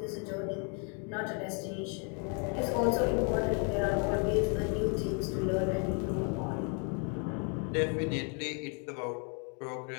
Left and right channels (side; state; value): right; quieter; 38.4 dB